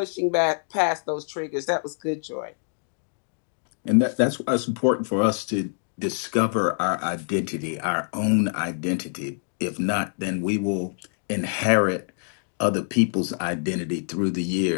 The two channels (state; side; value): silent; right; digital silence